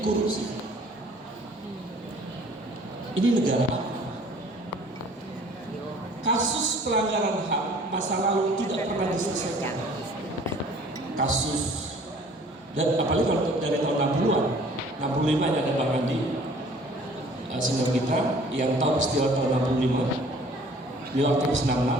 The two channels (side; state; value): both; normal; correlation 0.53